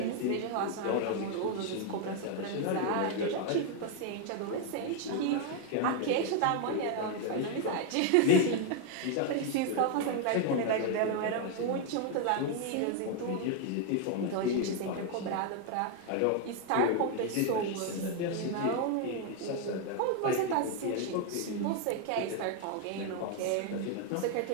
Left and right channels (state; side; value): different; both; correlation 0.00